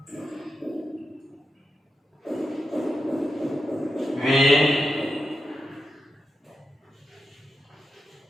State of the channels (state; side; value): normal; both; correlation 0.88